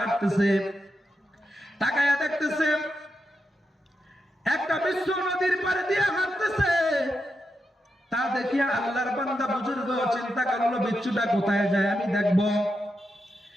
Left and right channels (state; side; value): normal; both; correlation 0.86